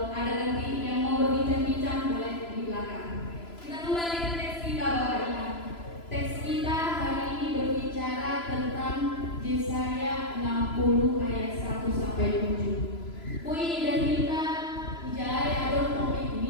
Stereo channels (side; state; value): right; late; 3.0 ms